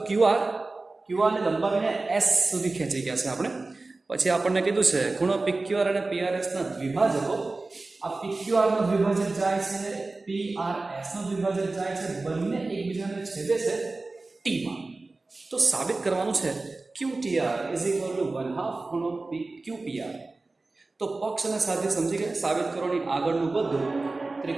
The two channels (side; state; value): left; quieter; 3.4 dB